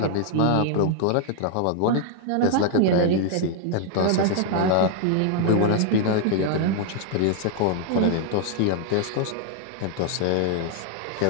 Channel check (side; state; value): both; different; correlation 0.00